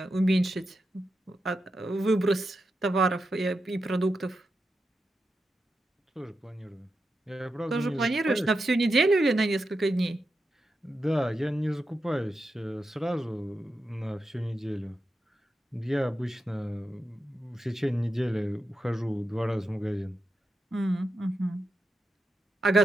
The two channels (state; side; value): normal; both; correlation 0.88